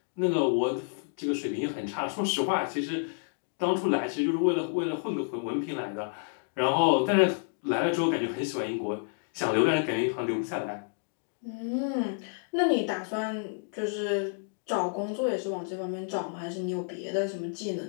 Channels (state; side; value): silent; right; digital silence